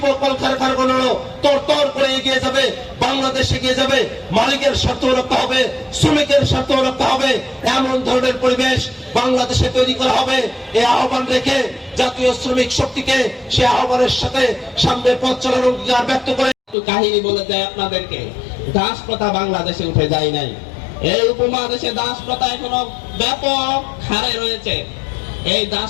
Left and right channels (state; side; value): drops out; right; at 16.8 s